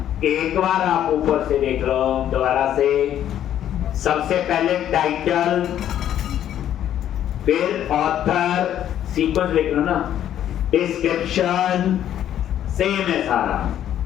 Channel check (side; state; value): right; quieter; 10.9 dB